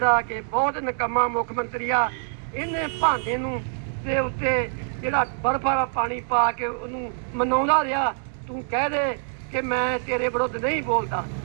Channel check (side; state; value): left; silent; 62 dB below the other